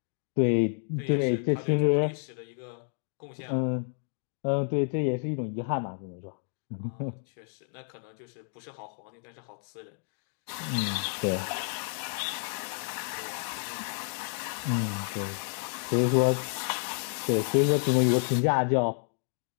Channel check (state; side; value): silent; right; digital silence